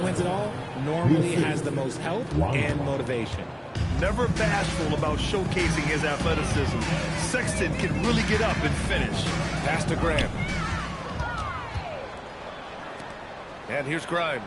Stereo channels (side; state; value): both; identical; correlation 1.00